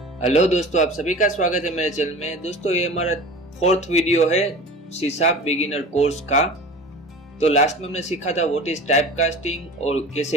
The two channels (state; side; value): normal; both; correlation 0.37